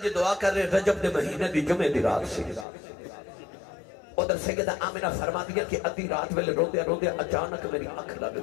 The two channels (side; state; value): right; drops out; at 2.7 s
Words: جی دعا کر رہے رجب دے مہینے دی جمعے دی رات سی ادھر سیدہ آمنہ فرما دیا کہ ادھی رات ویلے روندے روندے اچانک میری آنکھ لگ